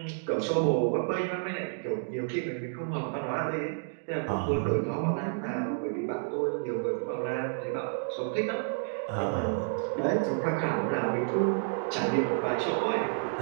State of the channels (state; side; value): silent; left; digital silence